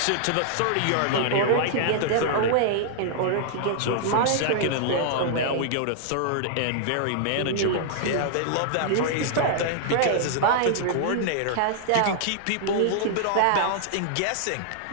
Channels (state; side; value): different; both; correlation -0.01